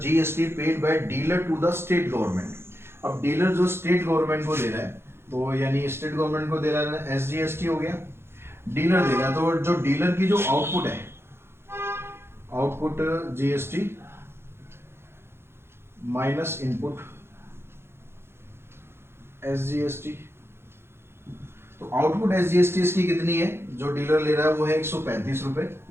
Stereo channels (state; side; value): late; left; 0.12 ms